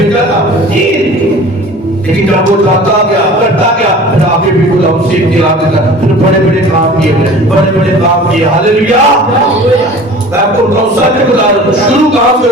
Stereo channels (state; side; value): normal; both; correlation 0.43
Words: था, 3। लेकिन जब वो जाता गया करता गया, फिर आगे भी गुलाम सीख दिला देता, फिर बड़े-बड़े काम किए, बड़े-बड़े काम किए। हालेलुया। मैं आपको बताऊं सच बता रहा हूं, शुरू कहां से